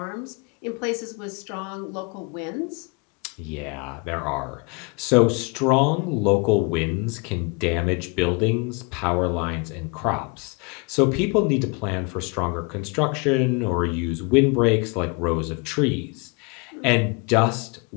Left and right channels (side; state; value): right; quieter; 31.7 dB